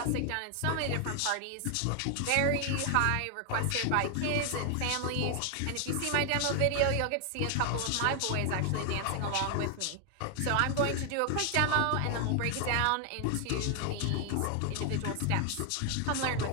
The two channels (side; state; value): both; different; correlation 0.00